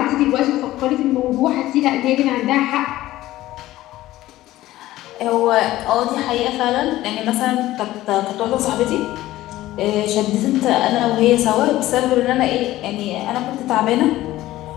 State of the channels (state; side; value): quieter; right; 15.7 dB